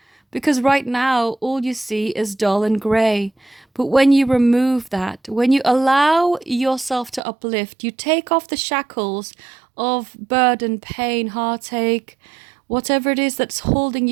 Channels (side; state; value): left; drops out; at 7.2 s